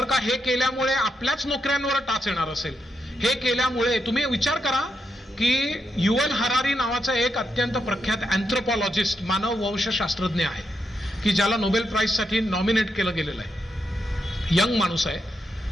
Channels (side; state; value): both; normal; correlation 0.82